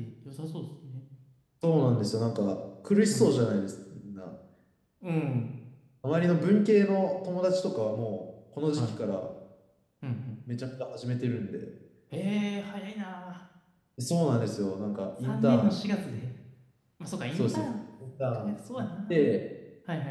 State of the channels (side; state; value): both; identical; correlation 1.00